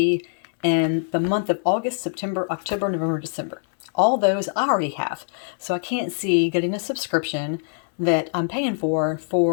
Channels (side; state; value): right; silent; 63 dB below the other